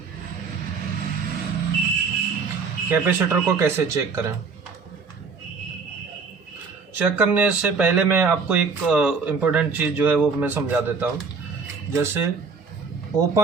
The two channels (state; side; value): quieter; left; 5.0 dB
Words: कैपेसिटर को कैसे चेक करें? चेक करने से पहले मैं आपको एक इम्पोर्टेंट चीज़ जो है वो मैं समझा देता हूँ। जैसे